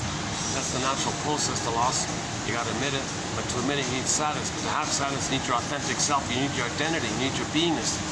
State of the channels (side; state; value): both; identical; correlation 1.00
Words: that's the natural process, the loss. You got to admit it, but to admit it you need sadness. But to have sadness you need your authentic self, you need your identity, you need your beingness.